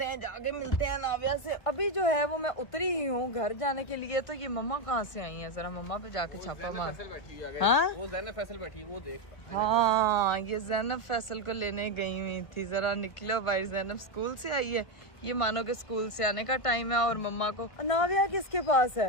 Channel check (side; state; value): right; late; 1.5 ms